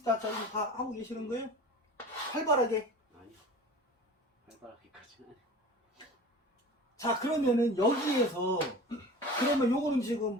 저희 다 하고 계시는 거예요? 활발하게. 아니요. 활발하게까지는 아니요. 자, 그러면은 여기에서 그러면 요거는 지금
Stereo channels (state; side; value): normal; both; correlation 0.38